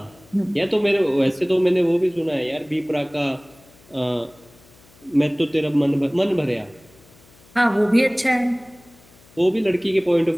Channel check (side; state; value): left; noise; hum, 27 dB below the sound